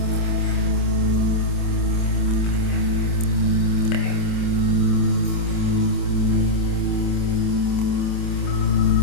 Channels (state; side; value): late; right; 26 ms